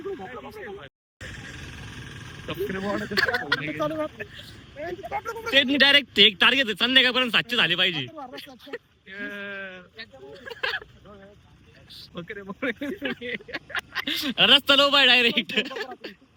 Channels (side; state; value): both; identical; correlation 1.00